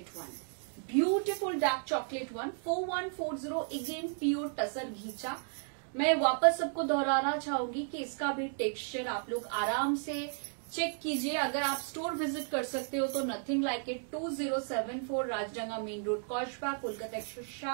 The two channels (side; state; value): left; silent; 55 dB below the other